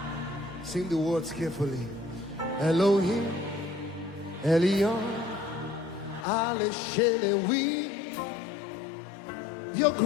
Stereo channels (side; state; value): right; drops out; at 6.2 s